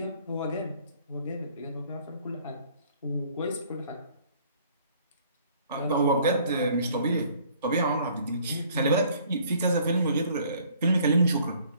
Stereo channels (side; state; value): both; inverted; correlation -0.58